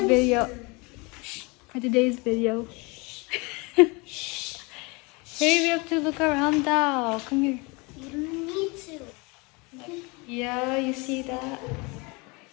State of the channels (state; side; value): quieter; right; 27.8 dB